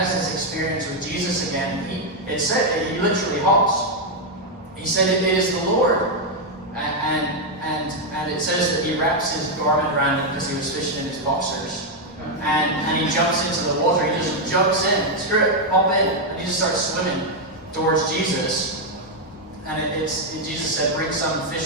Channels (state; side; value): normal; both; correlation 0.01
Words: this experience with Jesus again. it said, he literally hops. He said, it is the Lord. And it says that he wraps his garment around him because he was fishing in his boxers. And he jumps into the water. He just jumps in. Screw it, hop in. And he just starts swimming towards Jesus. And Jesus said, bring some